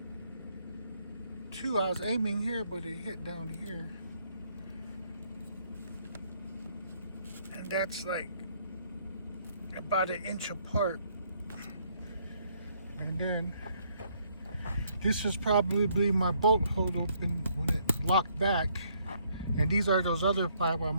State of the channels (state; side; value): inverted; both; correlation -0.68